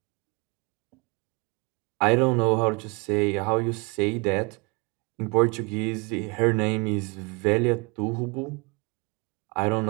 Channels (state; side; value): quieter; left; 30.1 dB